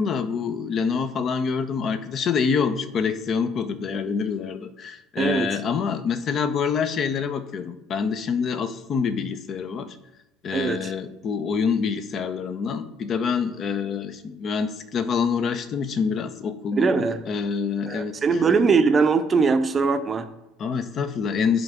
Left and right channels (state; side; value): normal; both; correlation 0.67